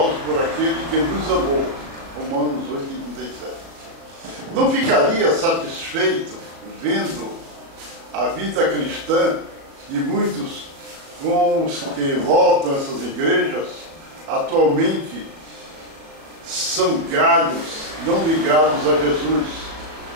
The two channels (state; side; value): late; left; 36 ms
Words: por aquele que nos amou. Romanos 8:37. Não ficaria satisfeito vendo a vida cristã de muitos com os que voltam essas igrejas, atualmente são galhos não ligados a Jesus,